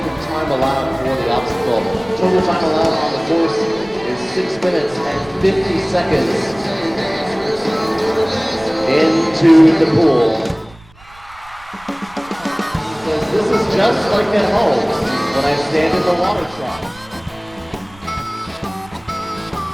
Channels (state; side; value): noise; right; rumble, 25 dB below the sound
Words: of time allowed for the obstacle. Total time allowed on the course is 6 minutes and 50 seconds into the pool. He says, this is just like at home when I stand in the water trough.